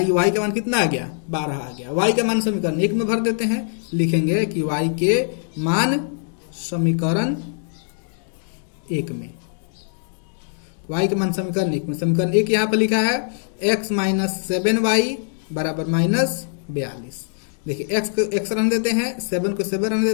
y का मान कितना आ गया? 12 आ गया। y का मान समीकरण 1 में भर देते हैं। लिखेंगे कि y के मान समीकरण 1 में, y के मान समीकरण 1 में, समीकरण 1 यहाँ पर लिखा है x - 7y बराबर -42। देखिए x रहने देते हैं, 7 को 7 रहने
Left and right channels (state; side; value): silent; right; digital silence